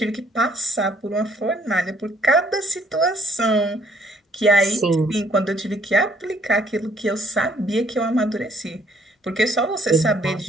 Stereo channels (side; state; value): both; normal; correlation 0.64